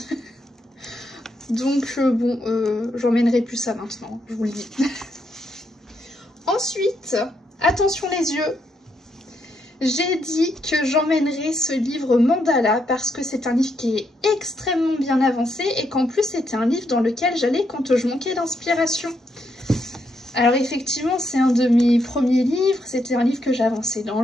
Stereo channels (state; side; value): normal; both; correlation 0.78